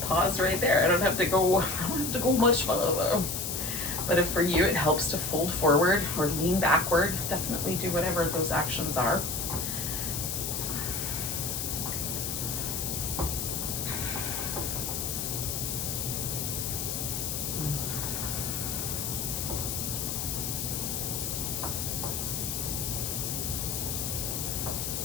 pause right there. I don't have to go much further. But if for you it helps to fold forward or lean backward, definitely do whatever those actions are.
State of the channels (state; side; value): noise; left; hiss, 2 dB below the sound